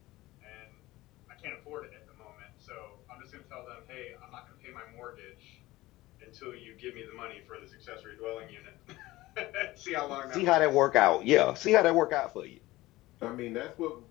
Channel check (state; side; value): quieter; right; 18.4 dB